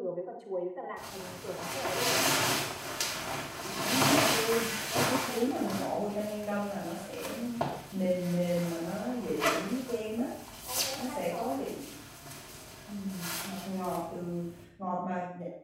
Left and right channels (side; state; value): both; identical; correlation 1.00